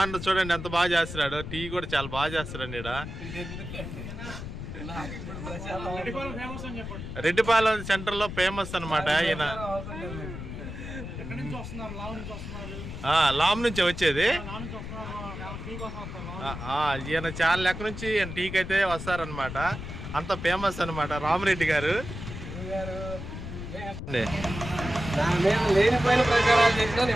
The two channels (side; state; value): left; noise; rumble, 8 dB below the sound